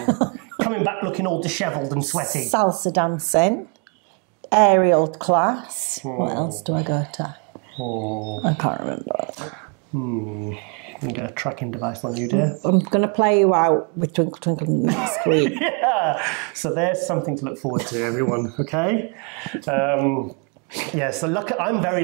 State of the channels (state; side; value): quieter; left; 36.0 dB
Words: Coming back looking all dishevelled and sweaty. Salsa dancing. Aerial class. What else do I go to? I can't remember. You get a tracking device on you, dear. I'm going to play you out with Twinkle Twinkle next week. Yeah. So there's something to look forward to, everyone. Okay. So I'm